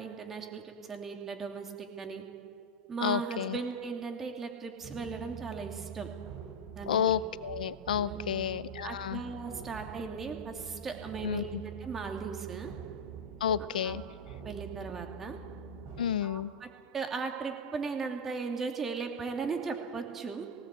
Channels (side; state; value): both; normal; correlation 0.03